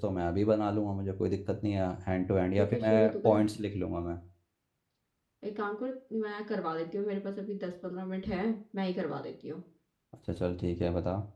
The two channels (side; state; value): both; identical; correlation 1.00